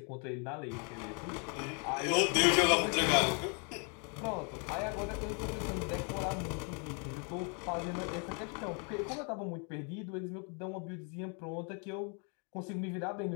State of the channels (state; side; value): quieter; right; 37.5 dB